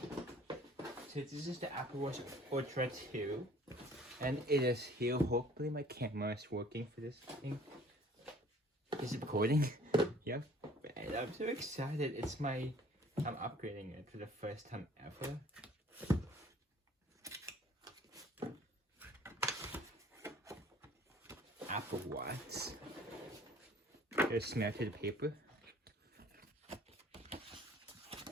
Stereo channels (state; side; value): normal; both; correlation 0.53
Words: So this is the Apple Watch Ultra 2. And it is here. Hopefully my camera is working for this thing. Is it recording? Yep. And I'm so excited. I'm upgrading it for the first time ever. Apple Watch. There's smell to the paper.